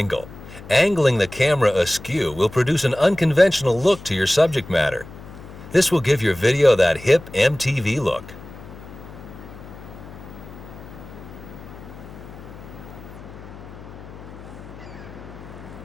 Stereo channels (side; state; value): left; noise; hum, 16 dB below the sound